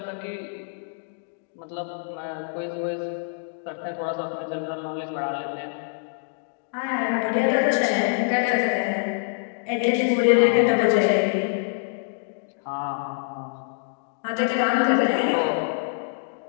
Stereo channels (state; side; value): silent; right; digital silence